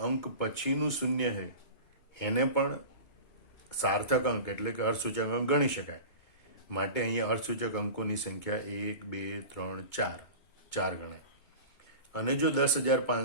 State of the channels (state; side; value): late; right; 2.2 ms